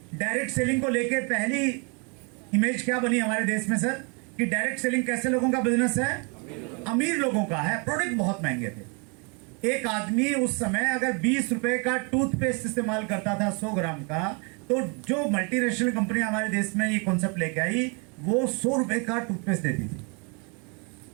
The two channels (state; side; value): quieter; left; 33.6 dB